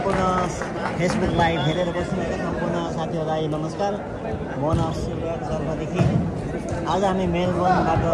फेसबुक लाइभ हेरेर बस्नुभएका सम्पूर्ण साथीहरूलाई नमस्कार। मोहन शिवराज जर्मदेखि आज हामी मेलबर्नबाट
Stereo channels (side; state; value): both; identical; correlation 1.00